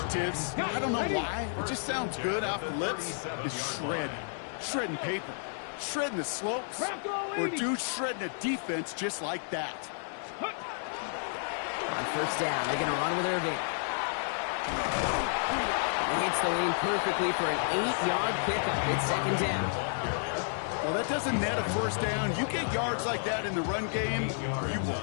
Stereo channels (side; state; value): right; silent; digital silence